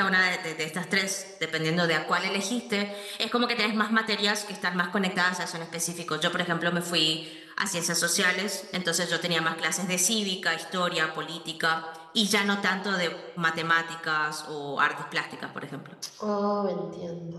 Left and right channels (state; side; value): identical; both; correlation 1.00